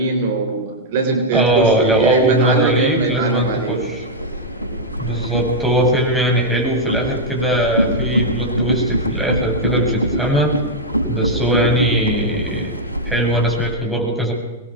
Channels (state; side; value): normal; both; correlation -0.04